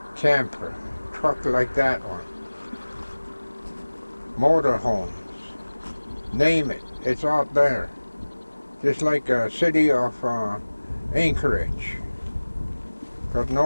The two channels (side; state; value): both; inverted; correlation -1.00